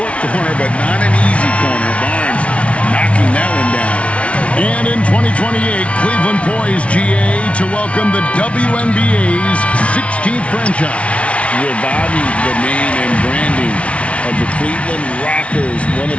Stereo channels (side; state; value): right; late; 0.062 ms